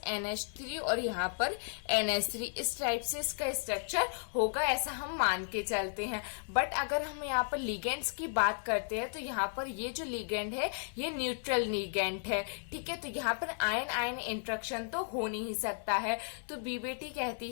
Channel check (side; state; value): right; silent; 55 dB below the other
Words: NH3 और यहाँ पर NH3। इस टाइप से इसका स्ट्रक्चर होगा, ऐसा हम मान के चलते हैं। बट अगर हम यहाँ पर लिगेंड्स की बात करते हैं तो यहाँ पर ये जो लिगेंड है ये न्यूट्रल लिगेंड है, ठीक है। तो यहाँ पर आयन आयन इंट्रैक्शन तो हो नहीं सकता है। तो बीबीटी